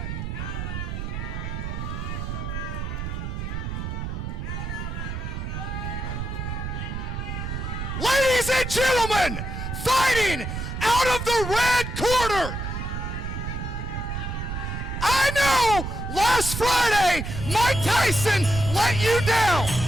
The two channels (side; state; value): right; noise; rumble, 5 dB below the sound